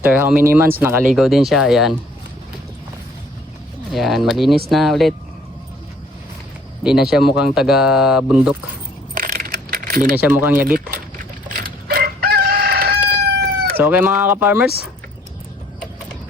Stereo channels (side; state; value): both; normal; correlation 0.60